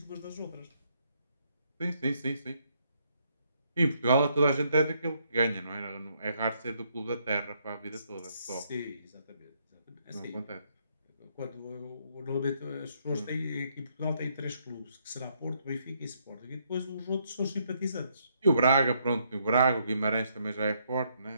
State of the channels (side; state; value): both; inverted; correlation -0.73